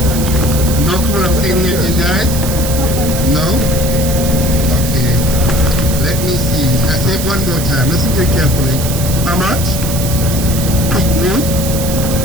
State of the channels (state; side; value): noise; right; hiss, 7 dB below the sound